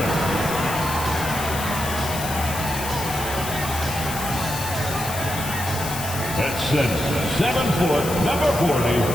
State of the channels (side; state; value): left; noise; hiss, 8 dB below the sound